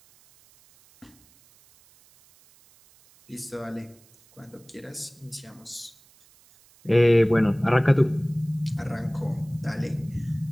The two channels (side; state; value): right; noise; hiss, 29 dB below the sound